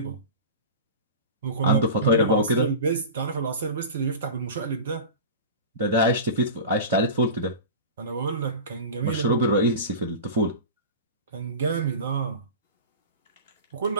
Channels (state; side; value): inverted; both; correlation -0.31